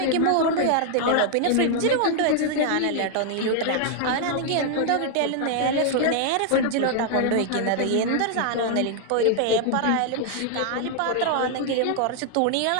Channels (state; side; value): different; both; correlation 0.00